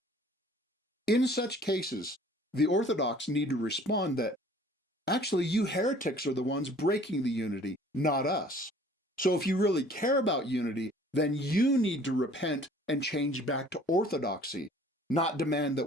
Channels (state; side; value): normal; both; correlation 0.52